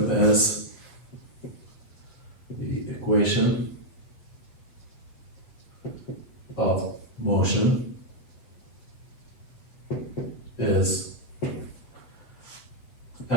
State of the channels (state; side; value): late; right; 8.1 ms